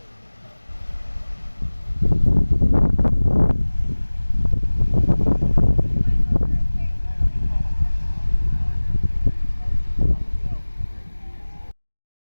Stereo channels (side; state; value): both; inverted; correlation -1.00